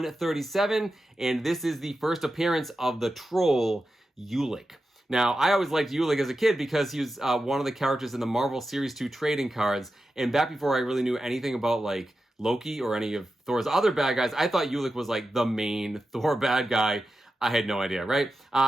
and this is the first appearance of the troll Ulik. Now, I always liked Ulik as a kid because he was one of the characters in the Marvel Series 2 trading cards, and back before I really knew anything about, like, Loki or any of Thor's other bad guys, I thought Ulik was, like, the main Thor bad guy. I had no idea, right?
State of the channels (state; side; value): normal; both; correlation 0.91